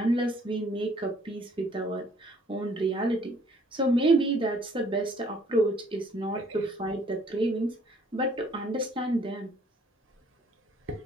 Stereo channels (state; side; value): normal; both; correlation 0.61